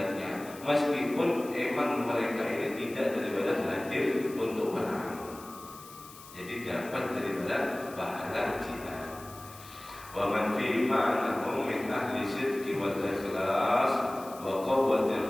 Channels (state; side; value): noise; left; hiss, 18 dB below the sound